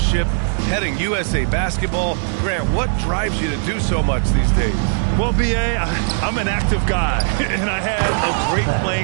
heading USA Basketball, Grant, what drives you to do so much these days? Well, B.A., I'm an active guy, and I had a great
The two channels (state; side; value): silent; left; digital silence